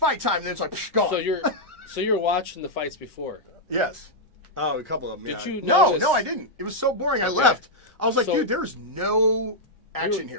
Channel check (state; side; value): normal; both; correlation -0.05